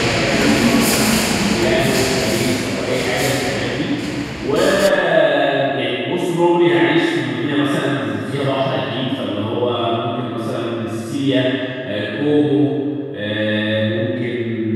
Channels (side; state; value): both; identical; correlation 1.00